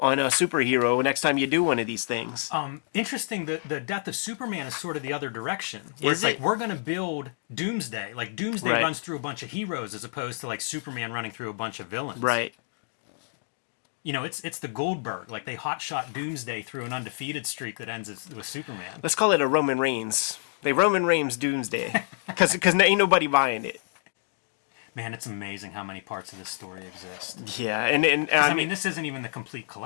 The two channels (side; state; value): right; silent; digital silence